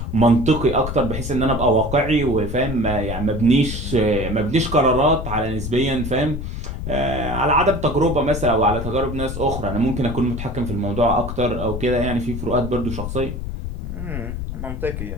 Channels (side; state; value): left; noise; rumble, 6 dB below the sound